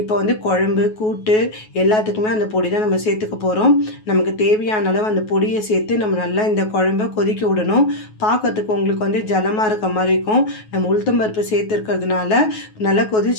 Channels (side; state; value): right; late; 9.3 ms